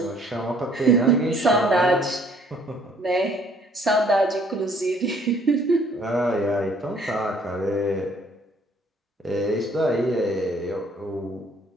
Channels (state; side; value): normal; both; correlation 0.61